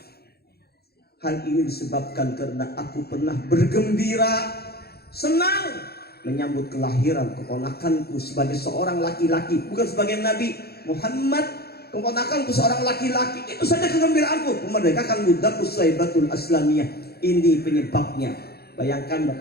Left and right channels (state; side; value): late; right; 0.46 ms